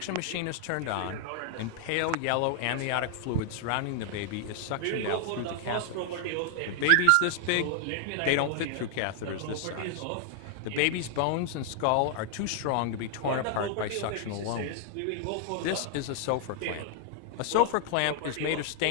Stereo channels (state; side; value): different; both; correlation 0.00